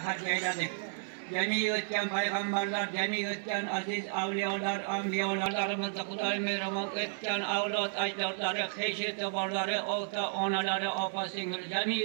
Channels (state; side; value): silent; left; 56 dB below the other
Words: eyledik. Cemi ötken peygamberler, cemi ötken aziz avliyalar, anbiyalarımızda Kuday merhamet ötken avlat ecdatları, heşi tebarları, ota onaları, apa singil,